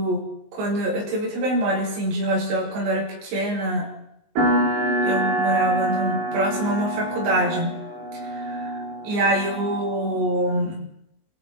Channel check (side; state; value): left; late; 19 ms